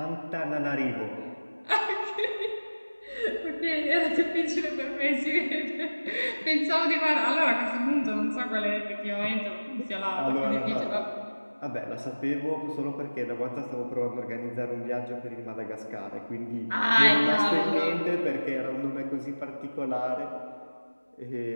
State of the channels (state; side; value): inverted; both; correlation -1.00